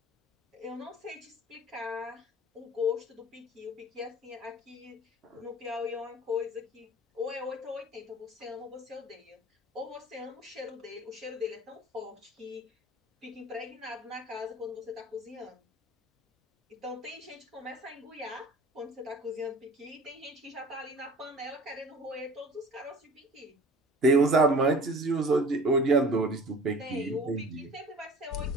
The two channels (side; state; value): both; normal; correlation 0.44